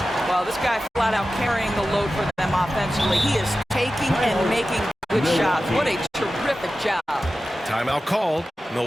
Well, this guy flat out carrying the load for them offensively. He is taking and making good shots. What a terrific job. Timeout called.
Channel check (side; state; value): both; normal; correlation 0.94